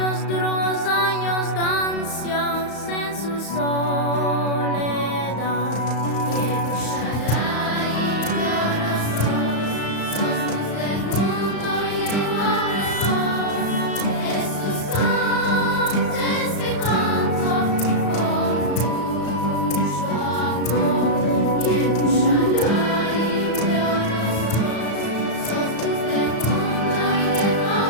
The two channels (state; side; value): late; right; 35 ms